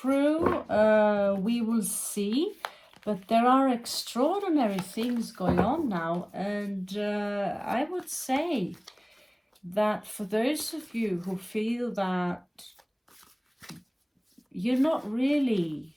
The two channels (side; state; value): both; identical; correlation 1.00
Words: We will see. But there are extraordinary things going on now. And I would say that for those of you who feel that you're not really,